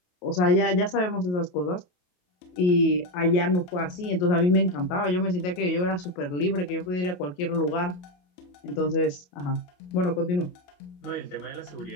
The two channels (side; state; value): right; late; 28 ms